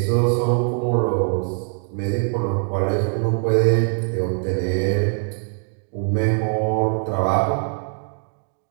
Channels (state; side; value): silent; left; 56 dB below the other